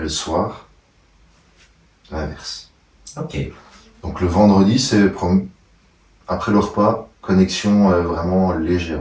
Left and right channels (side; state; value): both; identical; correlation 1.00